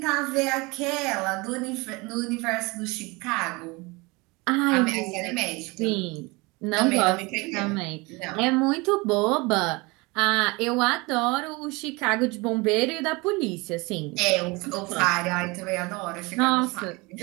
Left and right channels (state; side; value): quieter; left; 25.4 dB